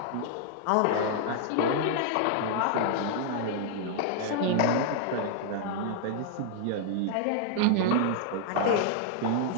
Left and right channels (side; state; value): both; different; correlation -0.01